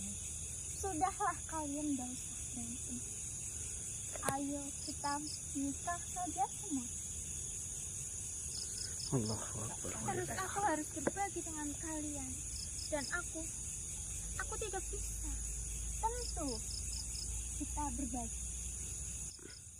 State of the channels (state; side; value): identical; both; correlation 1.00